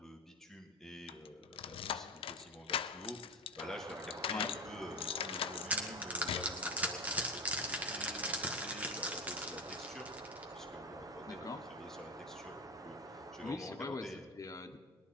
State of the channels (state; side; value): normal; both; correlation 0.16